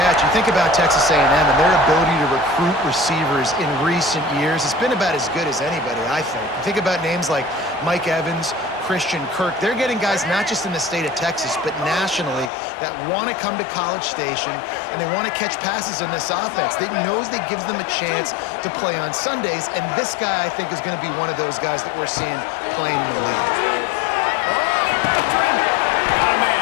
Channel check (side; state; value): right; drops out; at 12.5 s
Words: You think about Texas A&M and their ability to recruit receivers in recent years. It's been about as good as anybody, I think. You think about names like Mike Evans, Christian Kirk. They're getting guys not just in the state of Texas, but nationally that want to come to College Station and they want to catch passes in this offense. They knows that gives them a chance to play on Sundays, and this guy, I think, is going to be one of those guys that we're seeing playing in the league. Got a